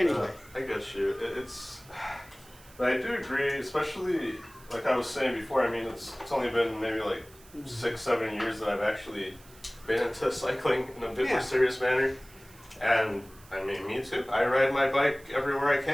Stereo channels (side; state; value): right; noise; hiss, 24 dB below the sound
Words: I get you. But I do agree, especially like I was saying before. I mean, it's only been maybe like 6-7 years that I've actually been into cycling in a bit Yeah. more serious manner, and I mean, me too. I ride my bike everywhere I